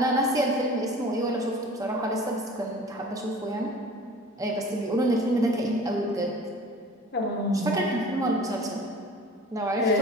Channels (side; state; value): both; normal; correlation 0.43